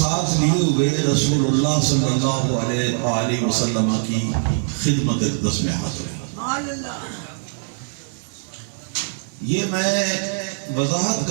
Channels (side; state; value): left; silent; 64 dB below the other